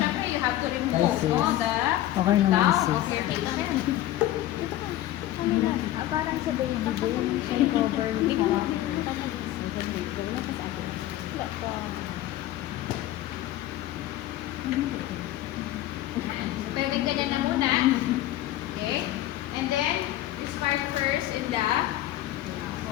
you have to remove Ay, sis. no, the Okay naman, gown sis. of your face. Parang sa baby boy. May cover. Pwede ganyan na muna. Okay? And then, you start first in the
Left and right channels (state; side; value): quieter; right; 14.3 dB